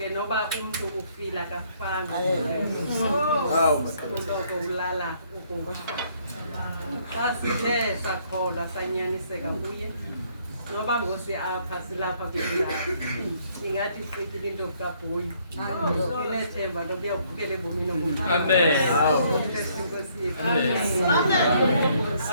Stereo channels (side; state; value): both; inverted; correlation -0.66